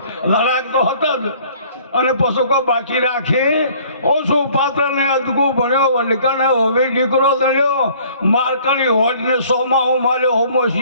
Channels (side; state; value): both; inverted; correlation -0.55